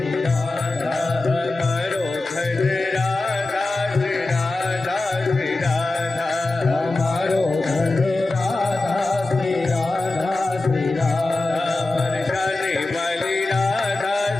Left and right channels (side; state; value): right; quieter; 3.0 dB